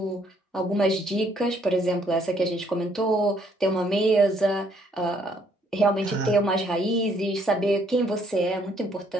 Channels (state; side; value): normal; both; correlation 0.67